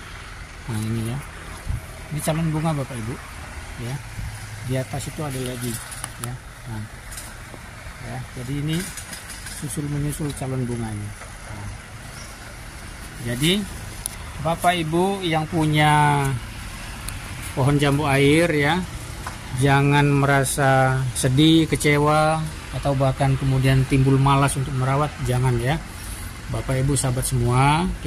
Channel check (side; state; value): both; identical; correlation 1.00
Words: Nah, ini ya. Ini calon bunga Bapak Ibu ya. Di atas itu ada lagi ya. Nah, ya, jadi ini susul menyusul calon bunganya. Nah, jadi Bapak Ibu yang punya pohon jambu air ya, jangan merasa sedih, kecewa, atau bahkan kemudian timbul malas untuk merawat. Jangan ya Bapak Ibu sahabat semua.